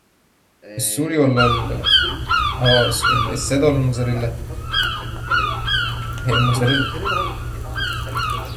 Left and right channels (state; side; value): identical; both; correlation 1.00